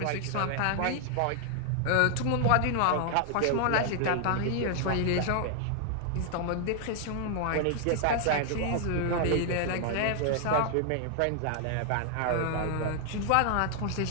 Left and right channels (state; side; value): different; both; correlation 0.00